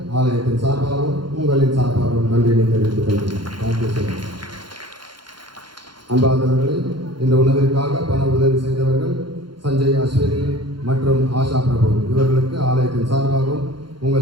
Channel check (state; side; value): late; left; 0.72 ms